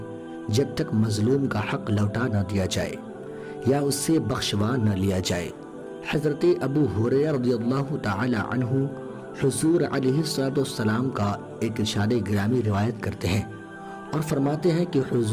جب تک مظلوم کا حق لوٹا نہ دیا جائے یا اس سے بخشوا نہ لیا جائے۔ حضرت ابو ہریرہ رضی اللہ تعالی عنہ حضور علیہ السلام کا ایک ارشاد گرامی روایت کرتے ہیں اور فرماتے ہیں کہ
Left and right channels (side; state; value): both; identical; correlation 1.00